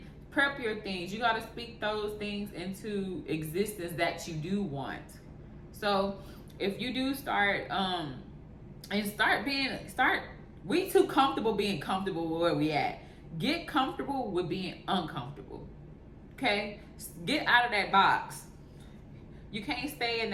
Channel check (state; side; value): identical; both; correlation 1.00